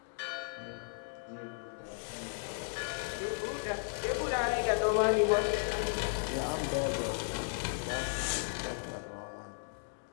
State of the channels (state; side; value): silent; right; digital silence